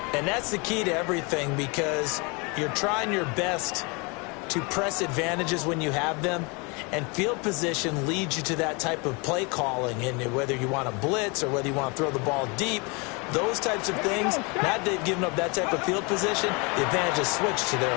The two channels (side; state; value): right; quieter; 30.1 dB